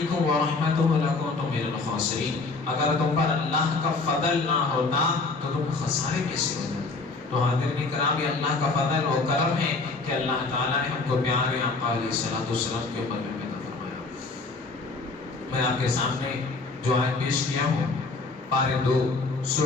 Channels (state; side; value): quieter; right; 3.8 dB